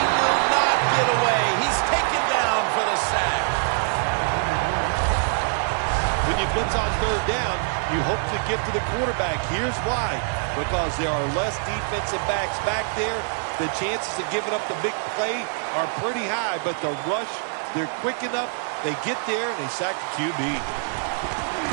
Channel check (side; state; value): left; silent; 62 dB below the other